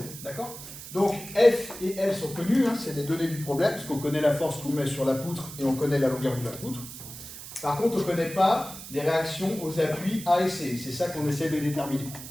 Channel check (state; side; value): noise; right; hiss, 12 dB below the sound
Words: D'accord? Donc F et L sont connus, hein, c'est les données du problème, parce qu'on connaît la force qu'on met sur la poutre et on connaît la longueur de la poutre. Par contre, on ne connaît pas les réactions aux appuis A et C. C'est ça qu'on essaie de déterminer.